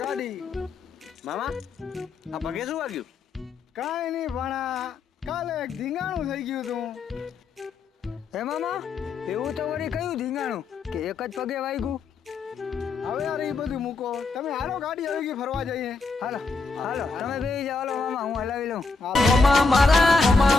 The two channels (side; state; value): right; quieter; 4.1 dB